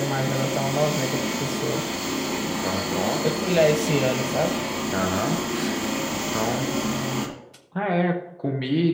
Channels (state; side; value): identical; both; correlation 1.00